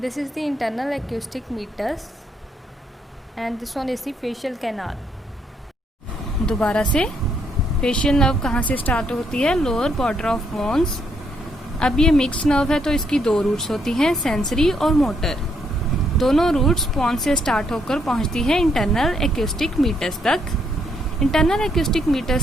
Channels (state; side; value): normal; both; correlation 0.73